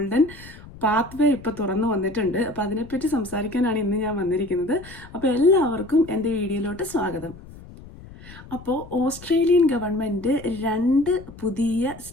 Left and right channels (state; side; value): noise; left; rumble, 18 dB below the sound